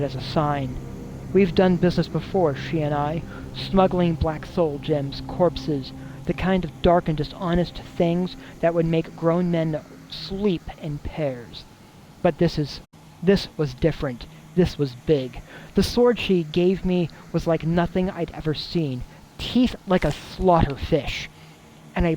as a sign. We've done business before, she and I. Smuggling black soul gems, corpses, the kind of dark and dishonest things that would make grown men sleep in pairs. But this was different. This was big. The sword she gave me was like nothing I'd ever seen. Teeth like a slaughter fish. And a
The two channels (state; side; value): identical; both; correlation 1.00